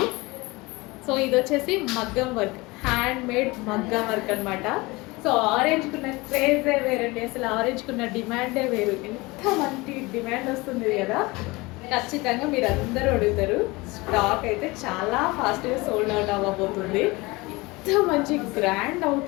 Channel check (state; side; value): quieter; right; 23.2 dB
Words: సో ఇది వచ్చేసి మగ్గం వర్క్, హ్యాండ్ మేడ్ మగ్గం వర్క్ అనమాట. సో ఆరెంజ్కున్న క్రేజే వేరండి, అసలు ఆరెంజ్కున్న డిమాండే వేరు. ఎంత మంచి డిమాండ్ వస్తుంది కదా, ఖచ్చితంగా మీరు అందరూ అడుగుతారు. స్టాక్ అయితే చాలా ఫాస్ట్గా సోల్డ్ అవుట్ అవ్వబోతుంది. ఎంత మంచి గ్రాండ్